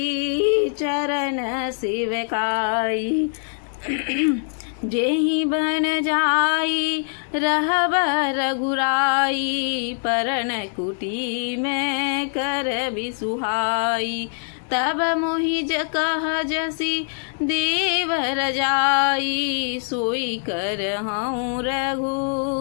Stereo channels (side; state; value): right; silent; digital silence